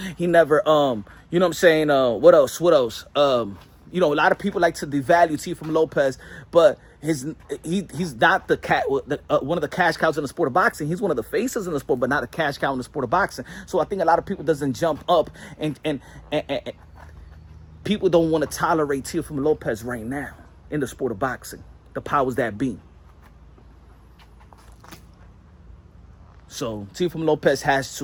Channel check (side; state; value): both; identical; correlation 1.00